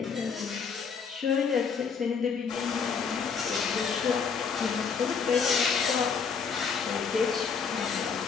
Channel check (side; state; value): right; quieter; 6.0 dB